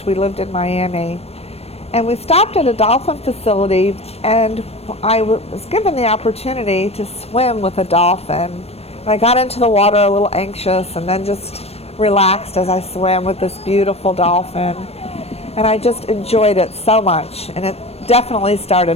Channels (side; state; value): right; late; 0.29 ms